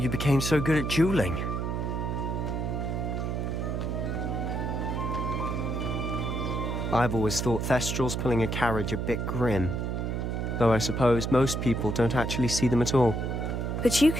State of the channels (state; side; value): noise; right; hum, 1 dB below the sound